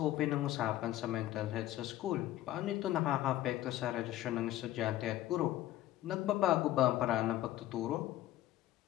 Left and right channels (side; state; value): right; quieter; 14.4 dB